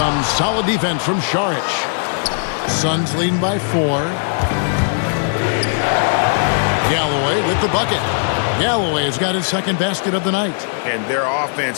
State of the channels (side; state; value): right; silent; 63 dB below the other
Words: solid defense from Saric. Suns leading by 4. Galloway with the bucket. Galloway has got his second basket of the night. And their